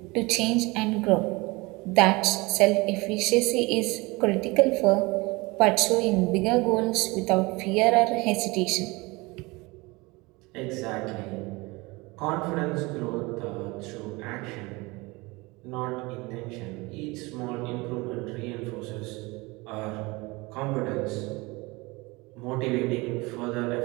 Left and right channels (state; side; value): quieter; left; 23.9 dB